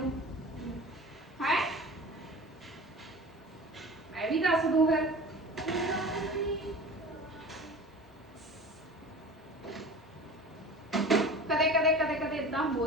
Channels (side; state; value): both; normal; correlation 0.37